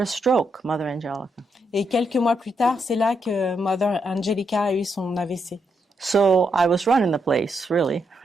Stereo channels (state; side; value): normal; both; correlation 0.80